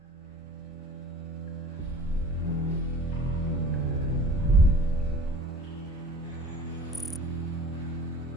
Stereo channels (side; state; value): both; normal; correlation 0.44